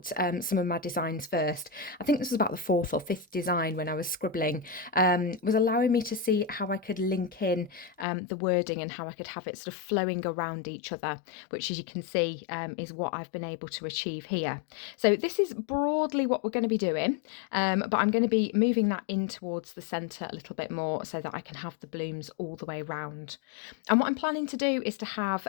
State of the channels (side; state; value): right; drops out; at 8.1 s